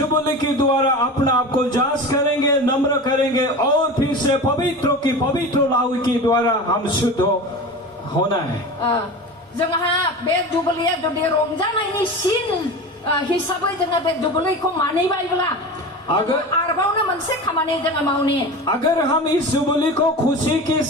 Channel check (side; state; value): both; normal; correlation 0.30